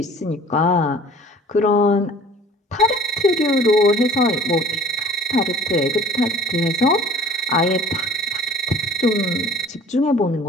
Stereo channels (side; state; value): both; normal; correlation 0.48